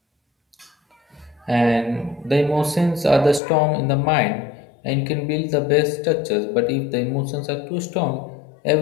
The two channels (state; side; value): drops out; right; at 3.4 s